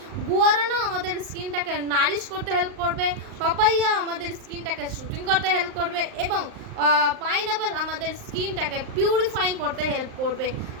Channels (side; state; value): left; late; 39 ms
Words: গুয়ারানা আমাদের স্কিনটাকে নারিশ করতে হেল্প করবে, পাপাইয়া আমাদের স্কিনটাকে শুটিং করতে হেল্প করবে এবং পাইনঅ্যাপেল আমাদের স্কিনটাকে পিউরিফাইং করতে হেল্প করবে।